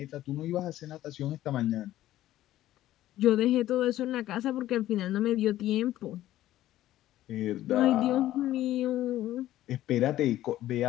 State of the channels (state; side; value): quieter; right; 14.1 dB